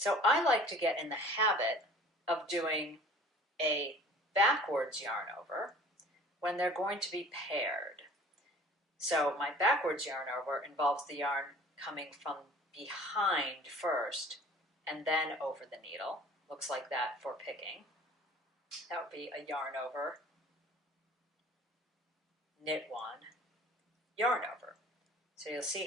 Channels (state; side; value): normal; both; correlation 0.48